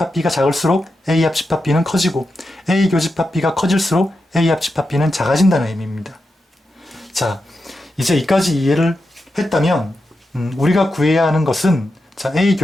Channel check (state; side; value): normal; both; correlation 0.88